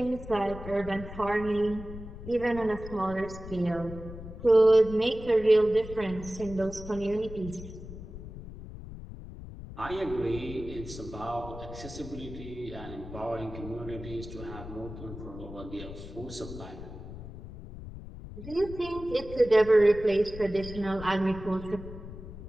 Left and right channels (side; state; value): left; noise; rumble, 12 dB below the sound